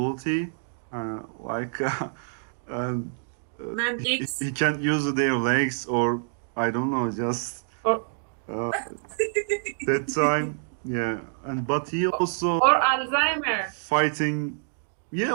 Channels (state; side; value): silent; left; digital silence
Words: like uh, Man X. he can't use their legs or I don't know just Or uh, that time, yeah, and but he also or Alzheimer. fighting, yeah,